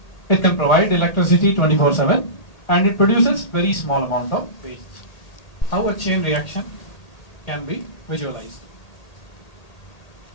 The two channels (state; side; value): late; right; 1.8 ms